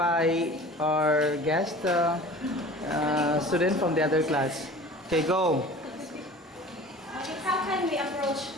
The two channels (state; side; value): normal; both; correlation 0.42